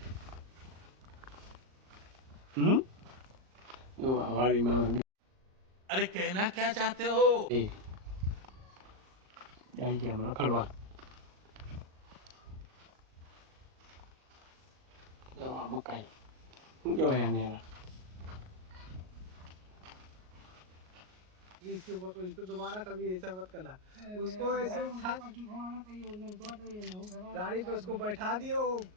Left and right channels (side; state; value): left; late; 38 ms